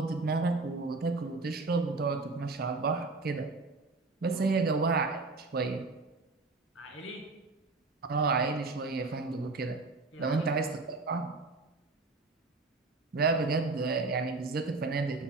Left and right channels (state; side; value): quieter; left; 3.6 dB